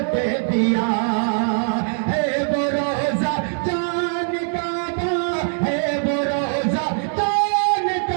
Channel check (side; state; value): left; silent; 57 dB below the other